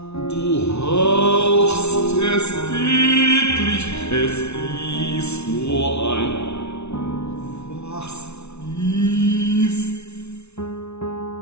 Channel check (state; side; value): late; right; 0.81 ms